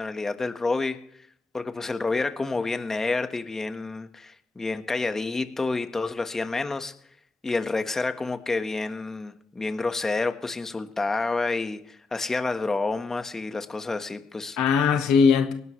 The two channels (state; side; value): quieter; right; 4.0 dB